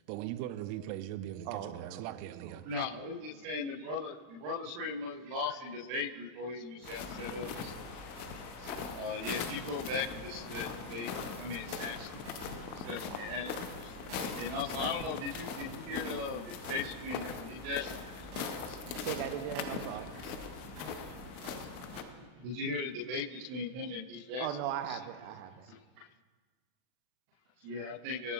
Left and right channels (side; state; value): left; late; 40 ms